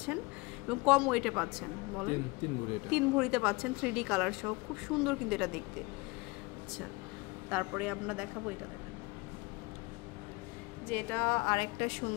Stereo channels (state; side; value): quieter; right; 25.2 dB